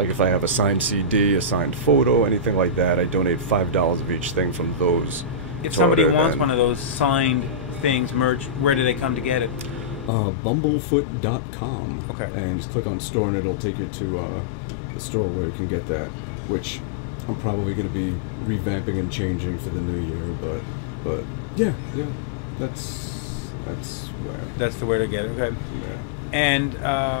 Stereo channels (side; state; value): right; drops out; at 10.1 s